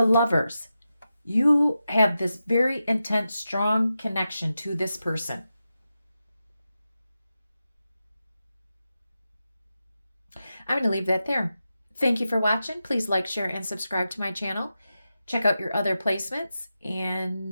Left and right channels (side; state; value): both; inverted; correlation -0.90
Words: lovers. You have this very intense, strong connection to this person. I'm going to leave that there. Thank you for watching. Please like, share, and subscribe to my channel. Check out your other placements,